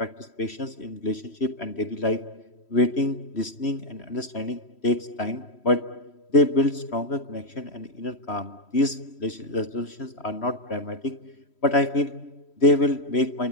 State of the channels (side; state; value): right; late; 3.1 ms